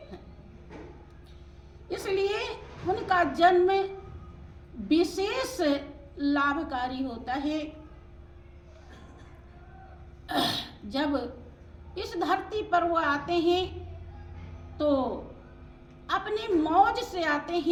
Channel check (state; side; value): identical; both; correlation 1.00